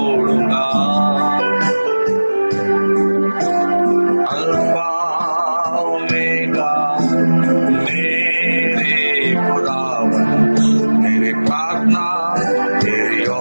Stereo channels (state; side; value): inverted; both; correlation -1.00